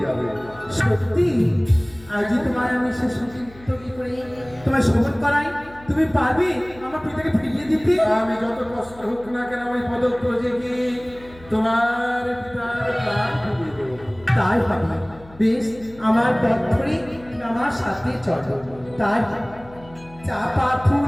যাবে। সত্যি? আজই তোমার আমি সে সঙ্গীত করে তোমায় শোভন করাই, তুমি পারবে আমার পিতাকে ফিরিয়ে দিতে? আমি যত কষ্ট হোক না কেন ওই পদব্রজে গিয়ে তোমার পিতার প্রাণ ফিরিয়ে দেবো। তাই হবে। বেশ, আমার পথ ধরে আমার সাথে চলো। তাই চাপা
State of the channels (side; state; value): left; noise; hum, 22 dB below the sound